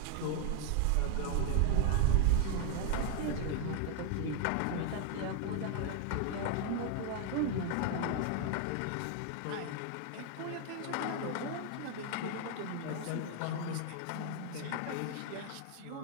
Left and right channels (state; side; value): different; both; correlation 0.01